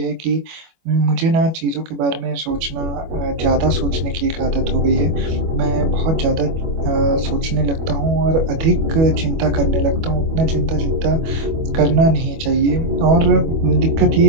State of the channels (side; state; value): left; late; 25 ms